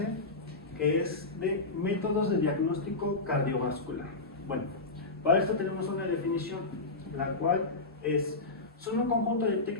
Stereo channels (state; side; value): quieter; right; 3.3 dB